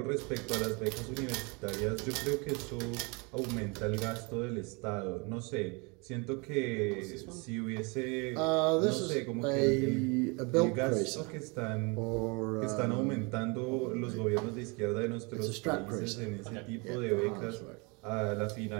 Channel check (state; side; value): quieter; left; 30.1 dB